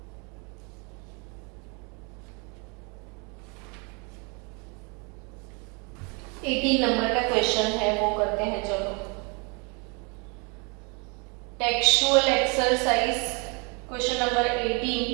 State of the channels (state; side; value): quieter; left; 32.2 dB